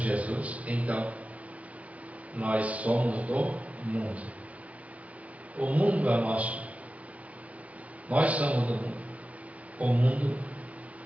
então nós somos do mundo. O mundo é nosso. Nós somos do mundo. O mundo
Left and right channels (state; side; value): late; left; 0.066 ms